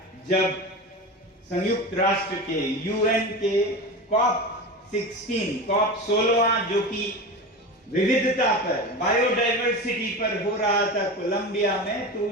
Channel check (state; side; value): normal; both; correlation 0.27